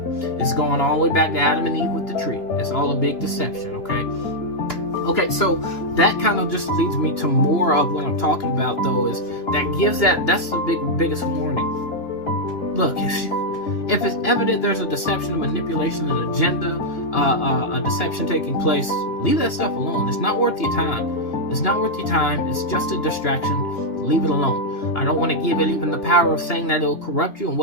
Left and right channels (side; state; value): right; late; 2.8 ms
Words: It's going all the way back to Adam and Eve with the tree. It's all a big deception, okay, so that kind of just leads me to more of what I'm talking about, though, is that's the biggest warning. Look, if it's evident there's a deception, a manipulation, an agenda, a deception taking place, leave that stuff alone. It's not worth your time. It's not worth your time. It's just a distraction. Leave it alone. I don't want to give it even the power of saying that it'll corrupt you and